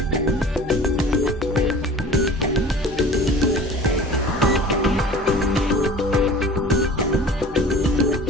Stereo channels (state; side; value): normal; both; correlation 0.42